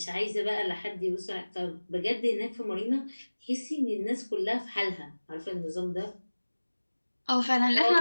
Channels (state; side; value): inverted; both; correlation -1.00